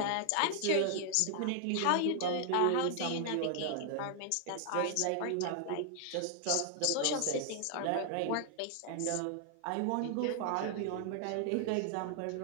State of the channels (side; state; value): both; different; correlation 0.00